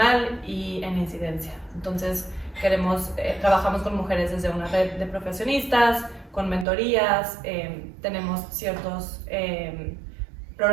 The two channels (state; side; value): drops out; left; at 6.7 s